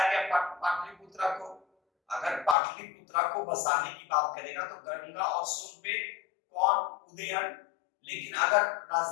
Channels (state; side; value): drops out; right; at 2.6 s